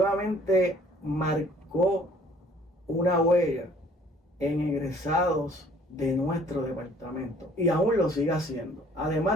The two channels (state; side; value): normal; both; correlation 0.56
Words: marcó una huella en egresados de nuestro departamento y aún lo sigue haciendo,